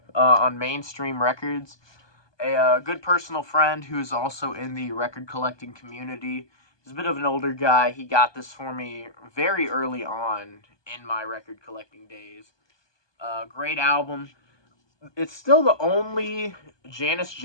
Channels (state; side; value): late; right; 1.2 ms